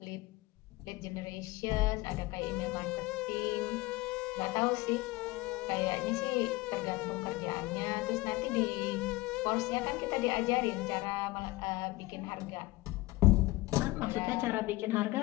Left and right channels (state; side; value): quieter; right; 20.2 dB